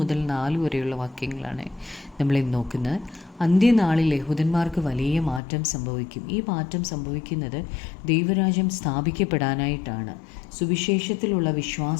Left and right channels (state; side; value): drops out; right; at 5.4 s